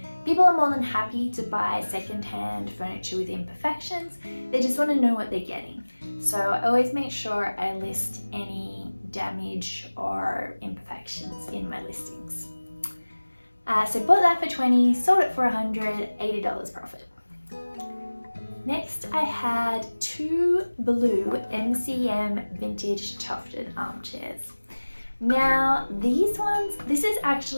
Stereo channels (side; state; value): both; inverted; correlation -1.00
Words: People are more than happy to buy second-hand furniture with imperfections. They just want to know what they're getting. So I always make sure I list any damage or imperfections in my listings. So bought that for $20, sold it for $180 profit. Next, I had 2 blue MCM vintage tufted armchairs. Now, these ones, this is